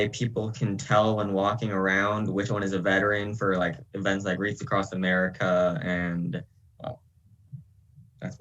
people can tell when walking around which one is a veteran for like events like Wreaths Across America and, well, that's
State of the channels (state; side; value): identical; both; correlation 1.00